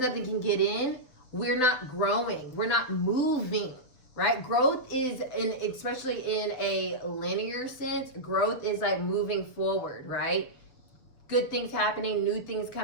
can get in, we're not growing. We're not moving, right? Growth is, especially in a linear sense, growth is like moving forward, right? Good things happening, new things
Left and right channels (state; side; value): late; right; 7.7 ms